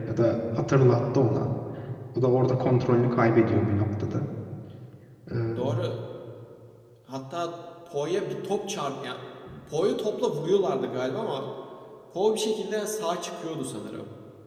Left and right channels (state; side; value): identical; both; correlation 1.00